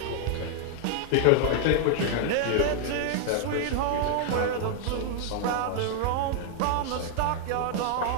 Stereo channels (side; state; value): both; different; correlation 0.00